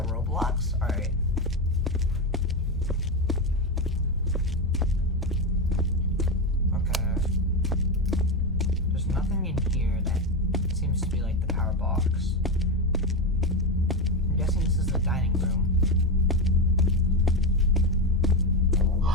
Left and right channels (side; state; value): both; normal; correlation 0.13